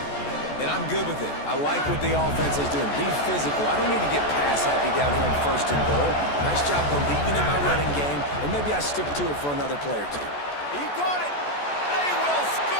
And I'm good with it. I like what the offense is doing. Be physical. I don't need to get pass happy down here on 1st and goal. Nice job believing in my running game, and maybe I stick to it for another play or 2. He got it. They will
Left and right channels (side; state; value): right; late; 14 ms